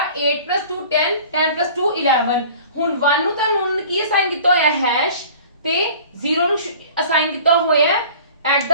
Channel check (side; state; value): both; inverted; correlation -0.45